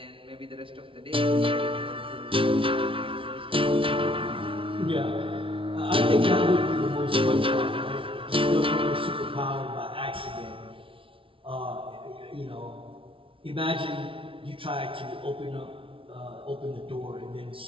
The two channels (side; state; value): left; late; 0.25 ms